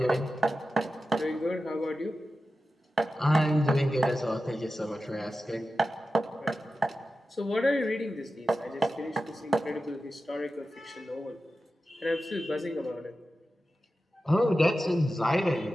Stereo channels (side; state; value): both; normal; correlation 0.93